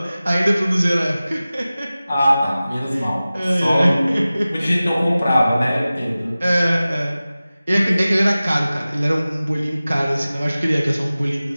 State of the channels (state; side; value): inverted; both; correlation -0.97